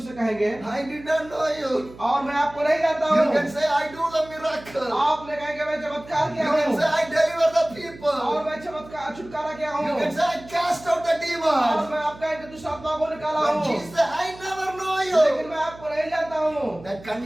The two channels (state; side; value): noise; right; hum, 19 dB below the sound